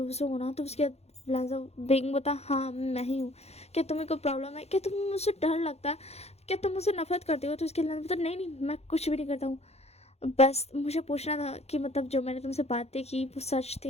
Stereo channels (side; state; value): right; late; 0.31 ms